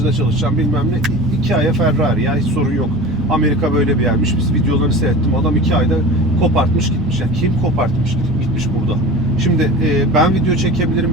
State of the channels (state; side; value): normal; both; correlation 0.34